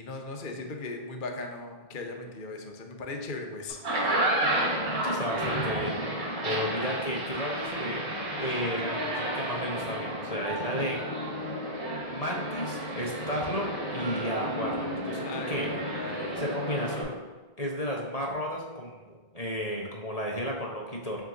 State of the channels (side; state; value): right; late; 1.8 ms